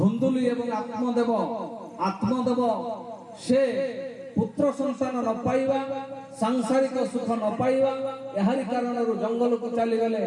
एवं आत्मदेव से पुत्र संतान न पाइबा सांसारिक सुख न पाइबा एहारी कारण जंगल को चली गले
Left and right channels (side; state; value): both; identical; correlation 1.00